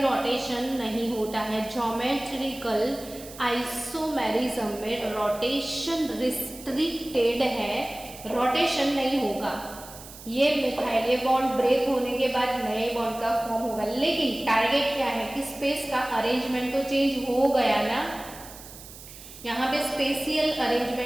नहीं होता है। ज्योमेट्रिकल आइसोमेरिज्म में रोटेशन रिस्ट्रिक्टेड है, रोटेशन नहीं होगा। ये मिथाइल, ये बॉन्ड ब्रेक होने के बाद नए बॉन्ड का फॉर्म होगा, लेकिन टारगेट क्या है कि स्पेस का अरेंजमेंट तो चेंज हो गया ना, यहाँ पे स्पेशियल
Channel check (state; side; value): noise; right; hiss, 16 dB below the sound